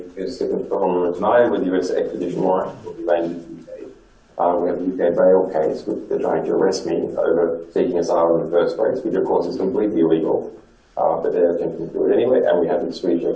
is different from tonight with US extradition warrant will be made in the UK. We have the UK bail case, which they're trying to arrest me over seeking asylum in the first place, which of course is completely illegal, but they're attempting to do it anyway. And we have the Swedish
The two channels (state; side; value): identical; both; correlation 1.00